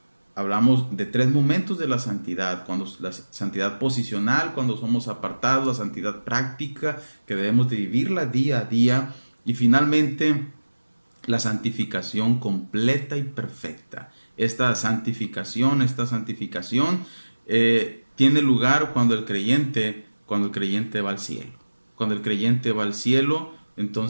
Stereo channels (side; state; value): both; inverted; correlation -1.00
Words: Hablamos de 3 momentos de la santidad: la santidad posicional, cuando somos apartados; la santidad práctica, que debemos de vivirla día a día; y finalmente la santificación completa y perfecta. Esta santificación tiene lugar cuando el creyente va al cielo. Cuando el creyente va al cielo,